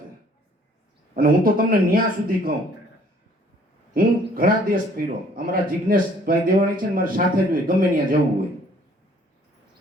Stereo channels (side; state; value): both; normal; correlation 0.59